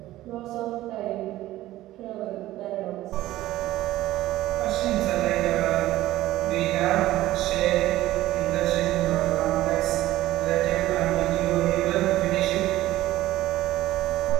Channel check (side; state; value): left; quieter; 15.5 dB